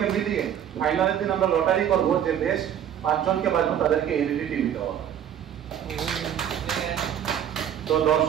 মিলিয়ে ফাইনালের দিন আমরা লটারি করবো যে বেশ 5 জনকে বাঁচবো তাদেরকে এলইডি টিভি দেওয়া হবে। তো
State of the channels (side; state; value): left; quieter; 9.8 dB